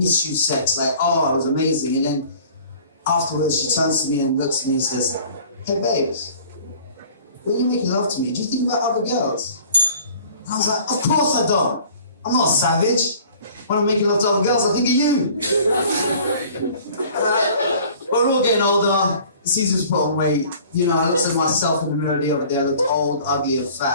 you sex, like, oh, it was amazing. And then afterwards she turns to me and looks at me and says, hey babes, when you making love to me, do you think about other girls? And I was like, of course I don't. I'm not a savage. When I'm making love to other girls, I think of you. But we're all getting older, it's easy to put on weight. You know, I looked at myself in the mirror the other day, I looked old, ugly and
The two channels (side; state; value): both; inverted; correlation -0.49